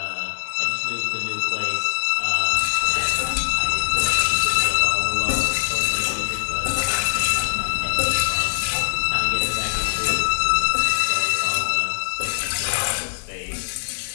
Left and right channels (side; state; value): right; silent; 64 dB below the other